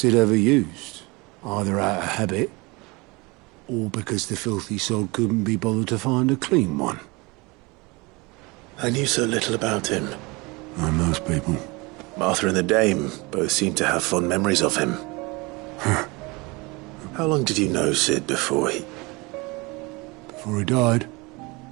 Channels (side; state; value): left; quieter; 25.5 dB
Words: ever used. Either out of habit, or because the filthy sod couldn't be bothered to find a clean one. I knew so little about him. Like most people. Martha and the Dame both seem to have fond memories of him. How long did you know Sid before he died?